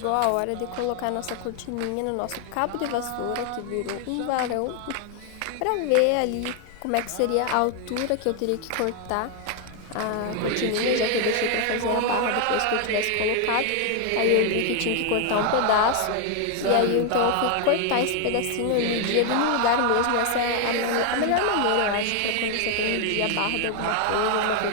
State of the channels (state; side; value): different; both; correlation 0.01